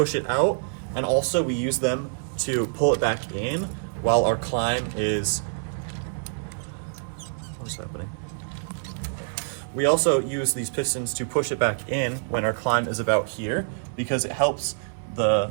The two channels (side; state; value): left; silent; 61 dB below the other